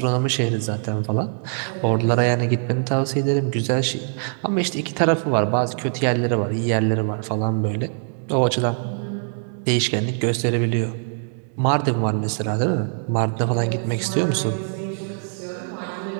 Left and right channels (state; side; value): silent; left; digital silence